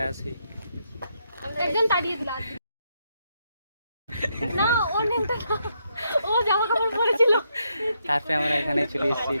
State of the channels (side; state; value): both; inverted; correlation -0.78